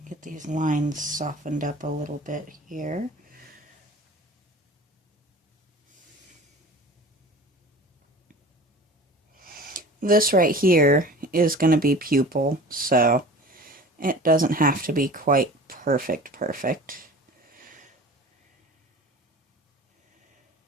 get these lines softened up a little bit here. This right here is going to be pupil, so it doesn't have to be quite perfect.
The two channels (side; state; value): both; normal; correlation 0.40